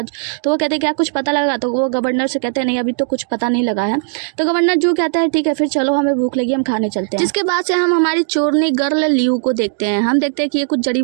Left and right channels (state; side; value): silent; left; digital silence